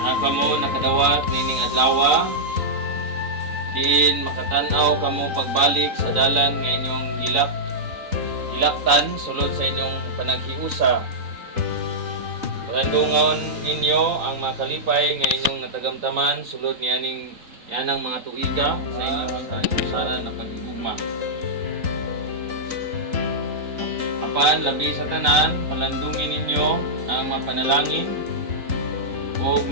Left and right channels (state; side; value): late; left; 3.9 ms